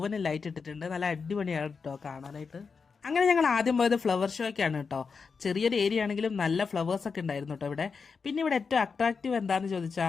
ലൈറ്റ് ഇട്ടിട്ടുണ്ട്. നല്ല അടിപൊളിയാണ് കേട്ടോ കാണാനായിട്ട്. അങ്ങനെ ഞങ്ങൾ ആദ്യം പോയത് ഫ്ലവർ ഷോയ്ക്കാണ് കേട്ടോ. ചെറിയൊരു ഏരിയ ആണെങ്കിലും നല്ല ഫ്ലവേഴ്സ് ഒക്കെ ഉണ്ടായിരുന്നു കേട്ടോ ഇവിടെ. പിന്നെ ഇവിടെ ഏറ്റവും അട്രാക്റ്റീവ് എന്താണെന്ന്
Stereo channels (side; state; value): right; quieter; 5.2 dB